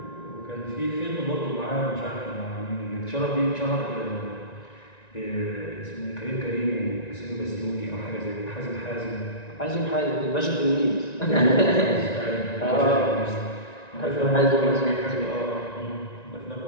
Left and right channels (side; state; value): right; late; 1.9 ms